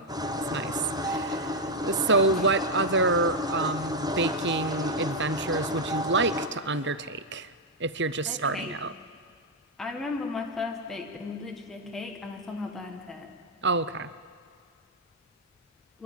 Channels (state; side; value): normal; both; correlation 0.02